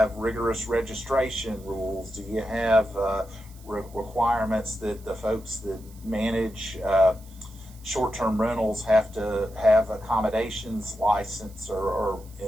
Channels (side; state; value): right; noise; hiss, 24 dB below the sound